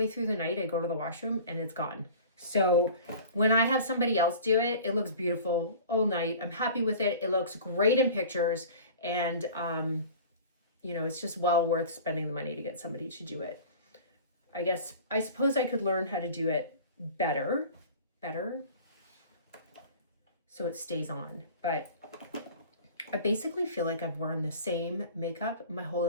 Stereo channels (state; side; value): inverted; both; correlation -0.41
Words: through the night, I go to the washroom and it's gone. So when I have somebody else do it, it looks beautiful all night. I'm happy with it. It looks great in pictures, and you know, it's just well worth spending the money to get somebody to do it. I suppose I could learn how to do it better, so it stays on. But I basically feel like I've worn the same makeup my whole